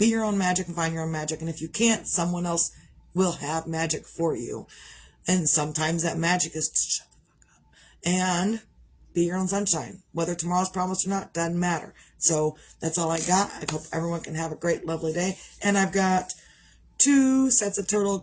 your own magic and find your own magic. And if you can't, someone else will have magic for you. And sometimes that magic is to shut the fuck up and be your own sunshine. Whether tomorrow's promised or not, doesn't matter. So that's all I got. I hope everyone can have a great, lovely day. And I've got 2 sets of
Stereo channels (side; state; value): both; identical; correlation 1.00